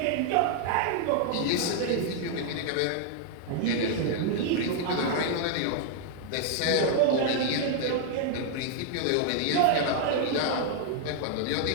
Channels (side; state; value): both; different; correlation -0.01